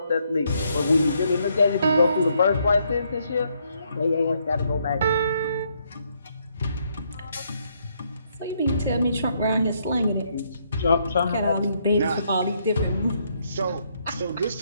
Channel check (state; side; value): inverted; both; correlation -0.73